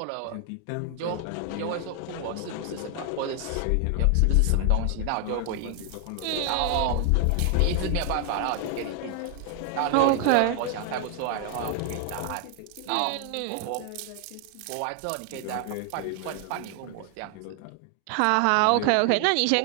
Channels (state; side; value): different; both; correlation 0.00